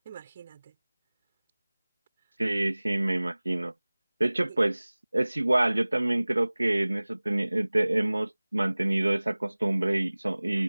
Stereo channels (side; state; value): both; inverted; correlation -1.00